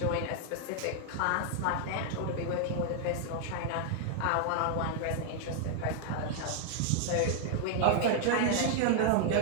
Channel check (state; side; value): different; both; correlation 0.00